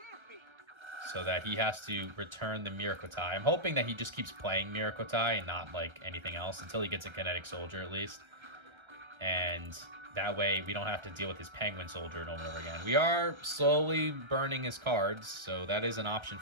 so that he has to return the Miracle tie. I'm hoping that he just keeps playing Miracle tie and not like anything else until he gets a Kinetic Soldier at least. And that way we don't have to deal with his Penguin Soldier over and over again. We are slowly burning his cards, so that is an option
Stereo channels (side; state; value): left; late; 1.3 ms